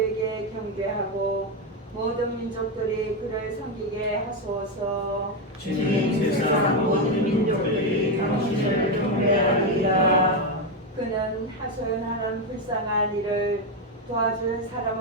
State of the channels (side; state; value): both; normal; correlation 0.08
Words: 경배하고 모든 민족들이 그를 섬기게 하소서. 주님, 세상 모든 민족들이 당신을 경배하리이다. 그는 하소연하는 불쌍한 이를 도와줄 사람